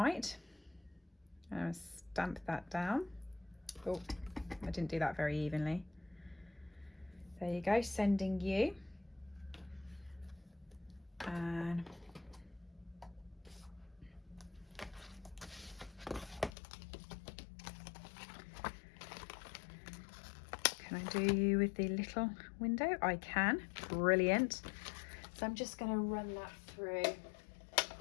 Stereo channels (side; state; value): right; drops out; at 16.5 s